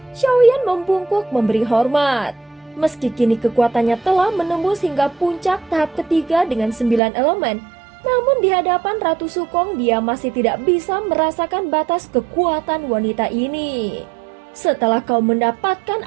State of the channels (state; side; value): drops out; left; at 7.0 s